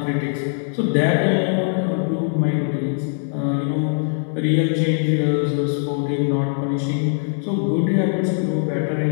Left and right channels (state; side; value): silent; right; 62 dB below the other